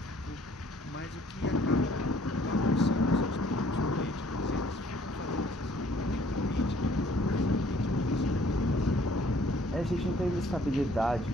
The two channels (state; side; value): normal; both; correlation 0.59